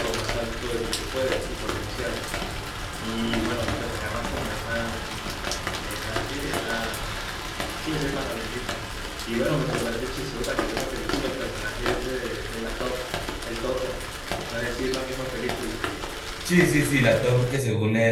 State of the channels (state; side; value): identical; both; correlation 1.00